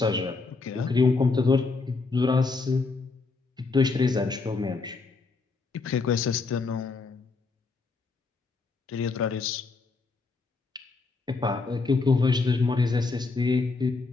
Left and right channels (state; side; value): quieter; right; 4.1 dB